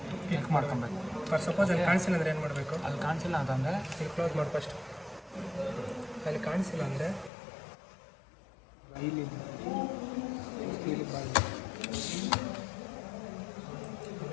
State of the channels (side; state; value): right; drops out; at 7.3 s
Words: click ಮಾಡ್ಕೊಬೇಕು. ಫಾರ್ ಸಪೋಸ್ ಅಲ್ಲಿ ಕಾಣಿಸಿಲ್ಲ ಅಂದರೆ ಏನು ಮಾಡಬೇಕು? ಅಲ್ಲಿ ಕಾಣಿಸಿಲ್ಲ ಅಂತಂದರೆ ಇಲ್ಲಿ ಕ್ಲೋಸ್ ಮಾಡಿ. ಫಸ್ಟ್ ಅಲ್ಲಿ ಕಾಣಿಸಿಲ್ಲ ಅಂದರೆ ಇಲ್ಲಿ